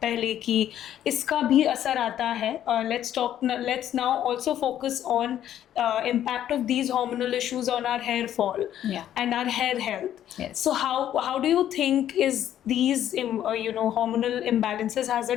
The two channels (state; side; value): quieter; right; 11.2 dB